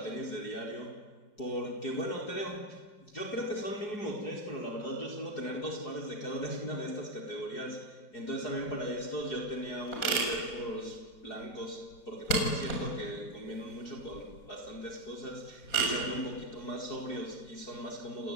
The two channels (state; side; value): late; right; 4.3 ms